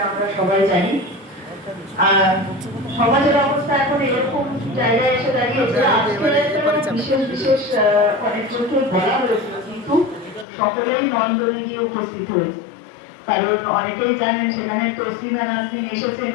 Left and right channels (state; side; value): drops out; right; at 10.5 s